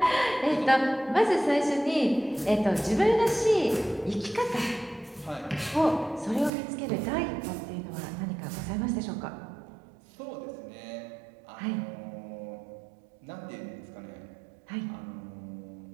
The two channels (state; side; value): drops out; left; at 6.5 s